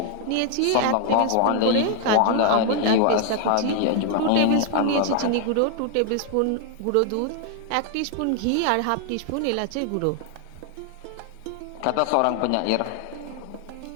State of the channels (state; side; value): different; both; correlation 0.00